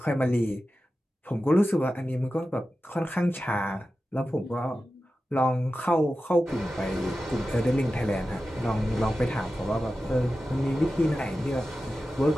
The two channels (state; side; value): normal; both; correlation 0.93